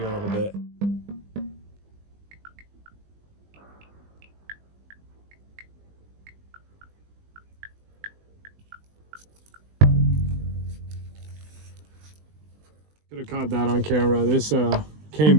little bit. Could have caught that on camera. This came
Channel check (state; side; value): late; left; 20 ms